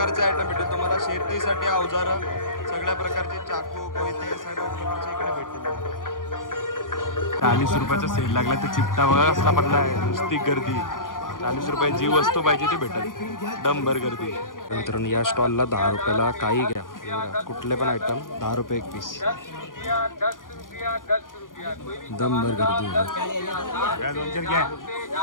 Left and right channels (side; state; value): right; late; 0.90 ms